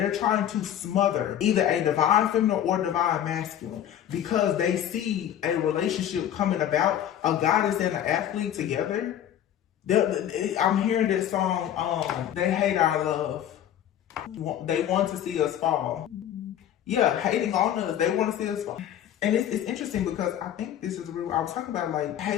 trying to smother either a divine feminine or divine masculine because they see a relationship coming about, a goddess and an athlete together. I'm hearing this song, They Hate Our Love. They want to see us fall. Yeah, hating on us. They want to see us fall. And it's interesting because I think this is real. I was talking about like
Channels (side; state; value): right; quieter; 10.7 dB